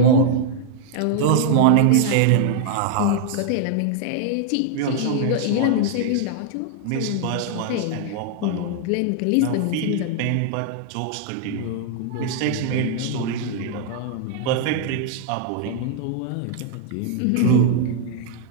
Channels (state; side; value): different; both; correlation 0.00